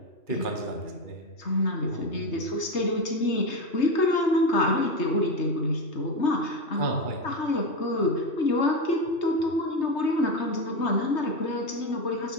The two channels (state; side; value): late; right; 3.2 ms